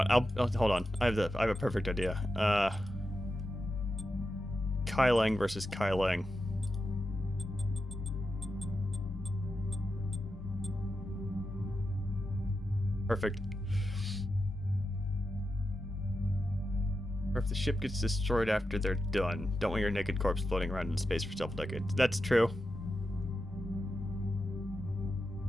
I'll hold on. I have a perfect idea. Kai Leng versus Kai Leng. Perfect. Or if the ship gets destroyed after they're done, don't want your naked corpse floating around in space for several decades. That's true.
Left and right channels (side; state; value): both; normal; correlation 0.89